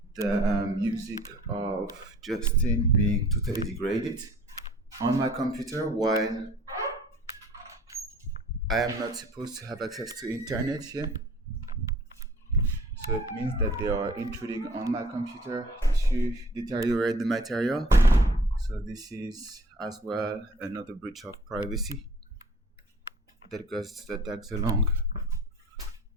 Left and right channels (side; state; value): both; normal; correlation 0.52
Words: the music of Justin being totally degraded on my computer while I am not supposed to have access to internet here. So it means that they are intruding on my computer to deteriorate the material. So this is as well another breach of privacy that tags along